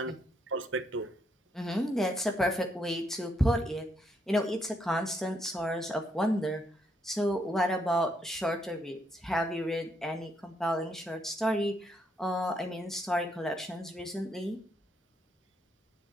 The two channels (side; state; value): both; normal; correlation 0.75